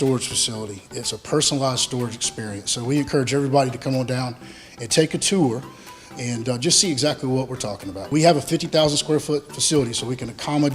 facility, it's a personalized storage experience. So we encourage everybody to come on down and take a tour and just see exactly what we're talking about. We have a 50,000 square foot facility, so we can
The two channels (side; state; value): both; identical; correlation 1.00